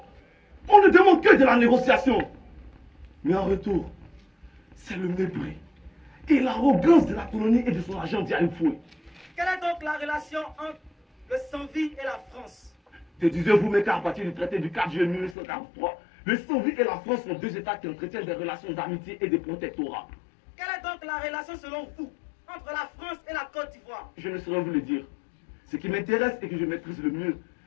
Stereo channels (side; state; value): right; drops out; at 15.4 s